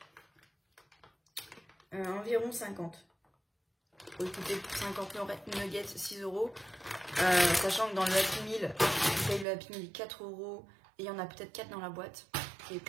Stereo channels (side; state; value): left; drops out; at 9.5 s